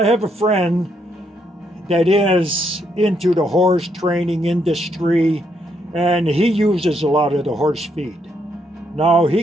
have a friend that is into the horse training industry, and he uses a lot of the horse feed. Now, he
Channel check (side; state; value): both; normal; correlation 0.75